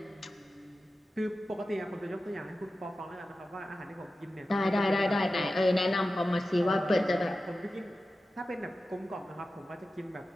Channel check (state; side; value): normal; both; correlation 0.93